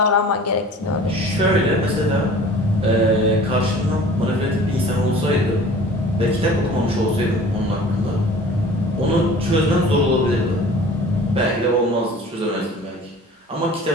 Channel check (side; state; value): both; normal; correlation 0.45